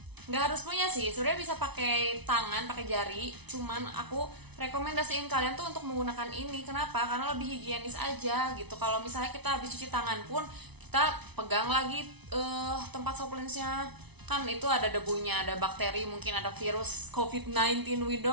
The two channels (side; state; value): left; late; 0.99 ms